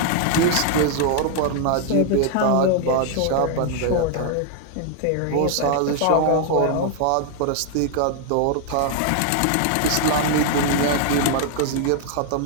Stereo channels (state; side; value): different; both; correlation 0.00